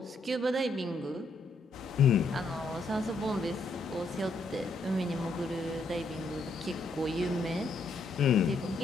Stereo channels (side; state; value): right; quieter; 3.0 dB